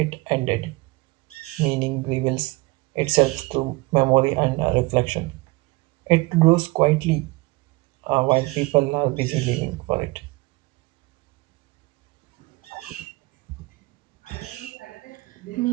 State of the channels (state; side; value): quieter; left; 23.0 dB